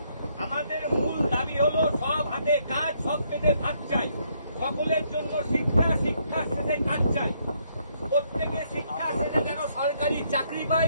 আমাদের মূল দাবি হলো সব হাতে কাজ, সব পেটে ভাত চাই। সকলের জন্য শিক্ষা, শিক্ষা শেষে কাজ চাই। প্রত্যেকে শিক্ষা শেষে যেন সরকারি চাকরি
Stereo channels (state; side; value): inverted; both; correlation -0.72